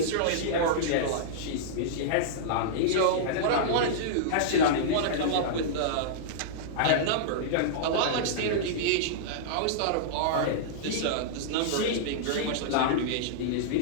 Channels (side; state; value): both; different; correlation -0.03